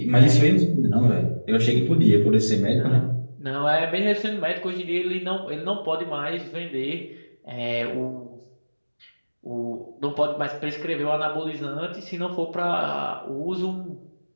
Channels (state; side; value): inverted; both; correlation -1.00